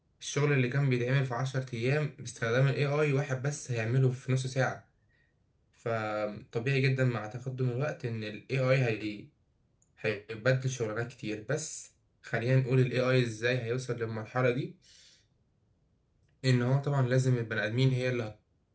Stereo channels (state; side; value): identical; both; correlation 1.00